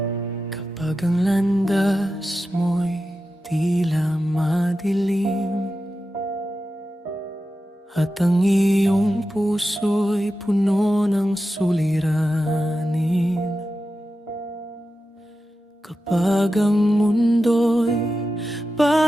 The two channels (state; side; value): normal; both; correlation 0.91